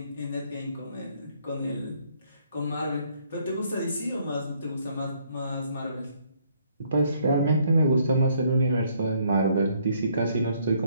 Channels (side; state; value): both; inverted; correlation -0.67